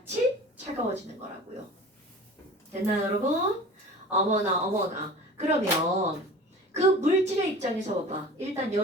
차가워지는 거라고요. 됐나요, 여러분? 어머나. 그러면 그 물질의 입장에서 봐봐. 일단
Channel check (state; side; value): normal; both; correlation 0.40